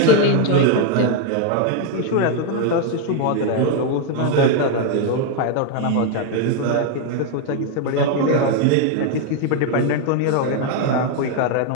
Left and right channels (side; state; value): both; different; correlation 0.01